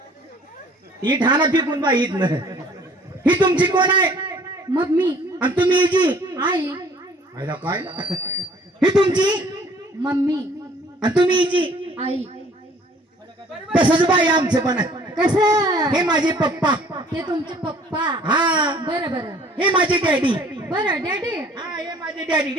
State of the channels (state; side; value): normal; both; correlation 0.55